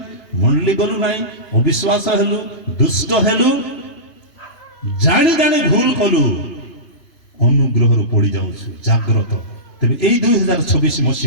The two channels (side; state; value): right; late; 3.5 ms